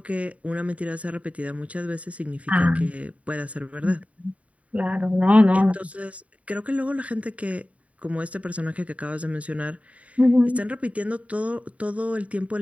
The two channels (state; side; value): late; left; 0.067 ms